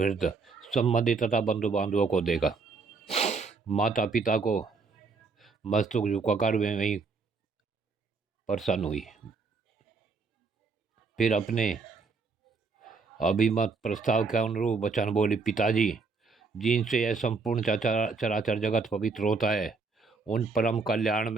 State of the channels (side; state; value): left; quieter; 4.5 dB